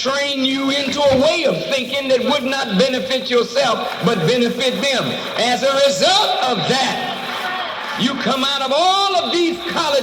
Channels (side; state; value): both; identical; correlation 1.00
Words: you into a way of thinking that would not benefit yourself, but benefit them. As a result of that, you come out of all of these